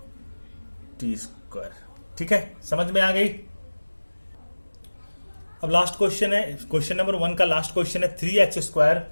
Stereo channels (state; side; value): inverted; both; correlation -1.00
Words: टी स्क्वायर। ठीक है, समझ में आ गई। अब लास्ट क्वेश्चन है, क्वेश्चन नंबर 1 का लास्ट क्वेश्चन है 3x²